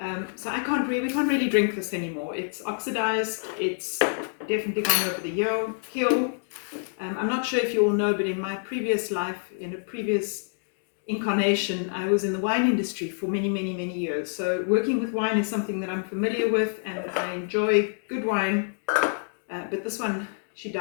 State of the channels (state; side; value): silent; right; digital silence